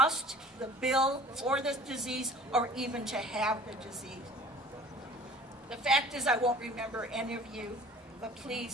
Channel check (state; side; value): normal; both; correlation 0.47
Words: the bill for this disease, or even to have the disease? The fact is I won't remember any of you, but